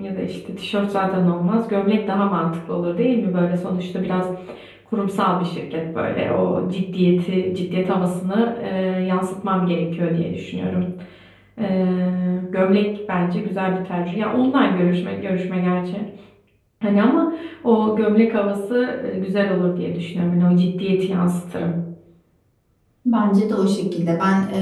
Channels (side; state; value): both; identical; correlation 1.00